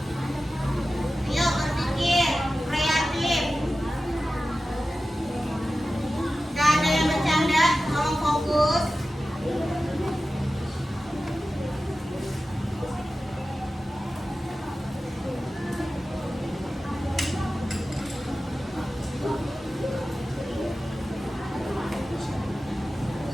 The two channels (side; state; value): both; normal; correlation 0.94